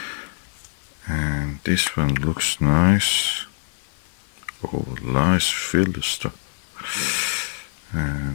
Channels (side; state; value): right; silent; 63 dB below the other